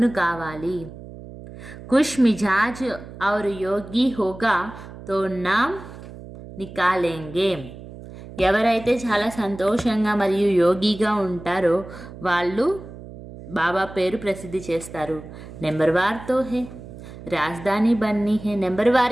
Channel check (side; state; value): right; noise; hum, 15 dB below the sound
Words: కావాలి. కుష్ మిజాజ్ ఔర్ యోగి హోగా తో నామ్ నికాలేంగే. ఎవరైతే చాలా సంతోషంగా మరియు యోగిగా ఉంటారో వాళ్ళు బాబా పేరు ప్రసిద్ధి చేస్తారు. నెంబర్ వార్తో హే రాజధాని బన్నీ హే. నెంబర్